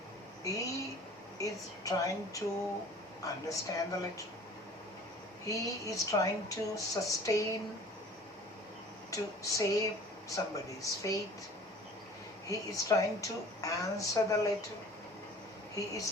He is trying to understand the letter. He is trying to sustain, to save somebody's faith. He is trying to answer the letter. He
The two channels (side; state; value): both; normal; correlation 0.46